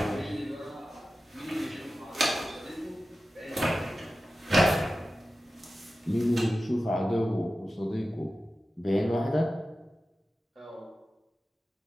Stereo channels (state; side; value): normal; both; correlation 0.94